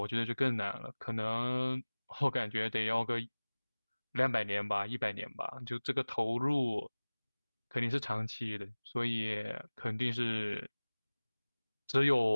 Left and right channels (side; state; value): both; inverted; correlation -1.00